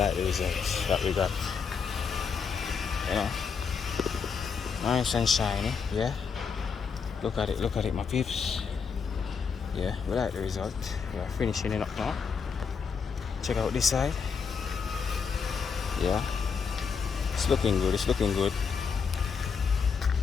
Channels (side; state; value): right; quieter; 5.9 dB